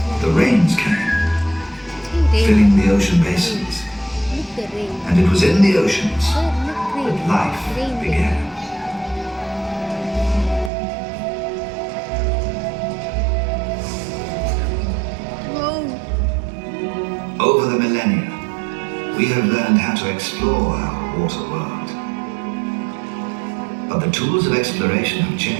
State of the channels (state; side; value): drops out; left; at 10.7 s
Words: the rains came, filling the ocean basins. And it was in the oceans that life began. Over the millennia, we have learned how to explore our water world. But the tools of exploration have